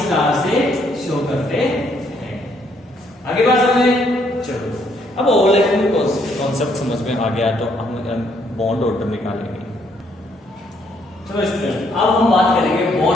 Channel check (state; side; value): normal; both; correlation 0.70